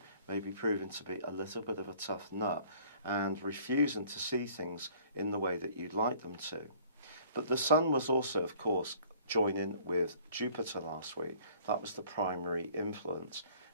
may be proving to be a little bit of a tough nut and refusing to see things in the way that you'd like them to. But the Sun was also, of course, joining with Jupiter last week. That was the primary influence.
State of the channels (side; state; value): both; inverted; correlation -0.54